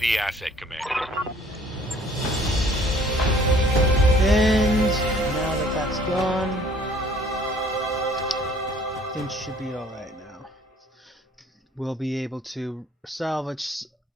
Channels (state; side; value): normal; both; correlation 0.57